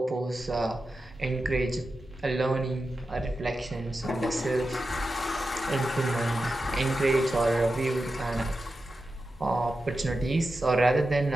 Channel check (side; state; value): both; normal; correlation 0.91